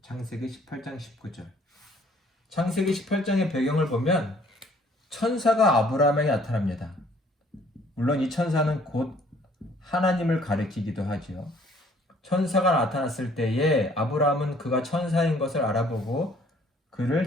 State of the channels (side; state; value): both; normal; correlation 0.59